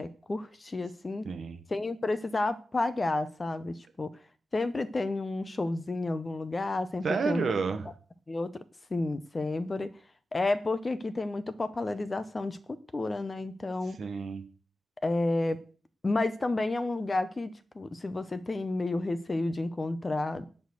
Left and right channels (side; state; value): both; normal; correlation 0.93